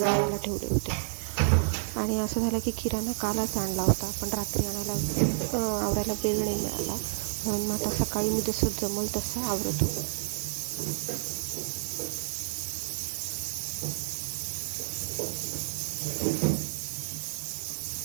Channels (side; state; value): left; silent; 58 dB below the other